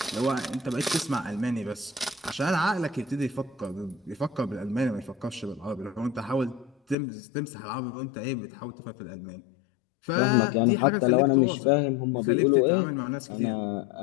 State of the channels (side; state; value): right; drops out; at 7.0 s